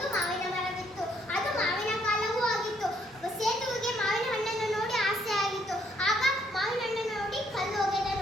ಮಾವಿನ ಮರವಿತ್ತು. ಅದು ಮಾವಿನ ಕಾಲವೂ ಆಗಿತ್ತು. ಸೇತುವಿಗೆ ಮಾವಿನ ಹಣ್ಣನ್ನು ನೋಡಿ ಆಸೆ ಆಗಿತ್ತು. ಆಗ ಮಾವಿನ ಹಣ್ಣನ್ನು ನೋಡಿ ಕಲ್ಲು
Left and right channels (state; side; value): normal; both; correlation 0.69